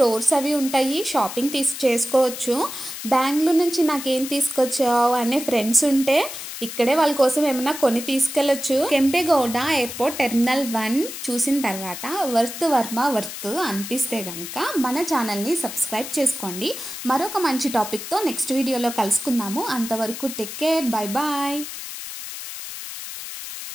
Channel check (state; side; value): noise; left; hiss, 9 dB below the sound